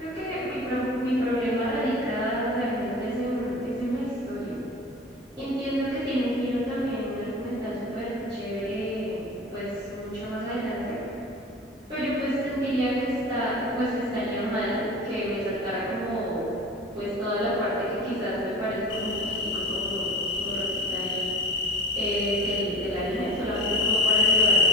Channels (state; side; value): normal; both; correlation 0.36